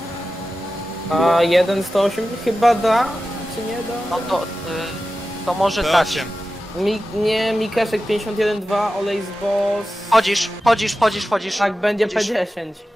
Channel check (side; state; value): both; normal; correlation 0.94